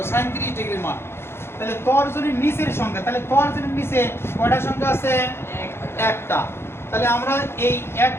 সাইন 30 ডিগ্রির মান। তাহলে তর্জনীর নিচের সংখ্যা, তাহলে তর্জনীর নিচে কয়টা সংখ্যা আছে? একটা। তাহলে আমরা এই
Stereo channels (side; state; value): right; late; 0.12 ms